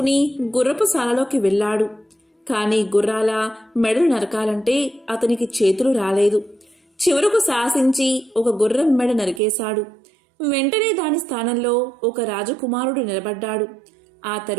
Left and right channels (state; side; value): drops out; left; at 9.4 s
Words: గుర్రపు శాలలోకి వెళ్ళాడు. కాని గుర్రాల మెడలు నరకాలంటే అతనికి చేతులు రాలేదు. చివరకు సాహసించి ఒక గుర్రం మెడ నరికేశాడు. వెంటనే దాని స్థానంలో ఒక రాజకుమారుడు నిలబడ్డాడు. ఆ